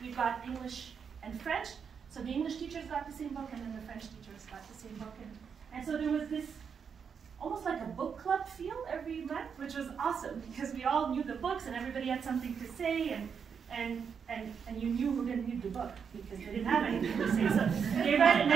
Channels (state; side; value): quieter; left; 6.7 dB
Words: got English and French. So the English teachers got the same book, and then the French teachers got the same book. And so there was this almost like a book club feel every month, which was awesome, because we all knew the books, and everybody had something to say, and you knew who didn't read the book, because they didn't have anything to say. So they read it